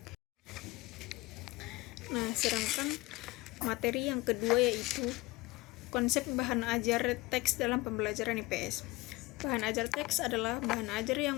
Nah, sedangkan materi yang kedua yaitu konsep bahan ajar teks dalam pembelajaran IPS. Bahan ajar teks adalah bahan ajar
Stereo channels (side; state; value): right; quieter; 21.5 dB